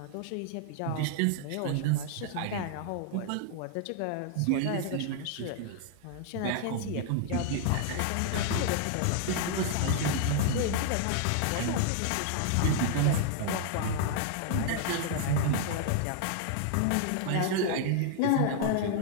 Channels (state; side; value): different; both; correlation 0.00